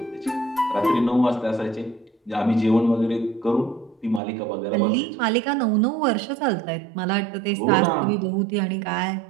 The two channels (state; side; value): drops out; left; at 4.2 s